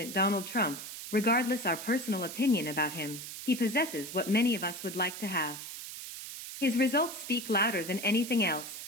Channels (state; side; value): noise; right; hiss, 10 dB below the sound